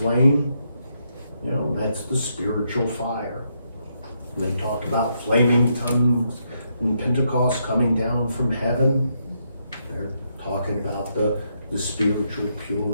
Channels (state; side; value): inverted; both; correlation -0.78